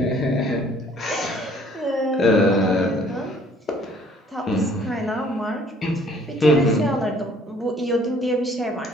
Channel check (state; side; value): normal; both; correlation 0.58